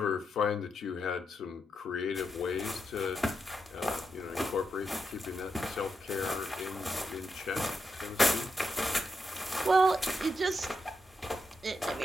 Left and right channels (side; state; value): both; normal; correlation 0.83